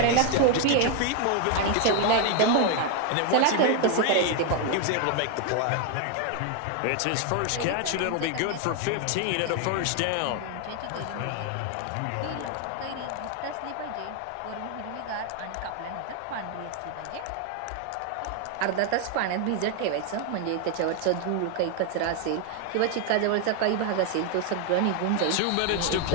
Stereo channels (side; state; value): both; different; correlation 0.00